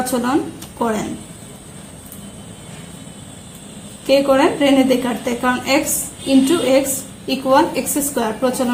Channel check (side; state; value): both; identical; correlation 1.00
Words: করেন, কে করেন? রেনে দেকার্তে, কারণ x into x equal x square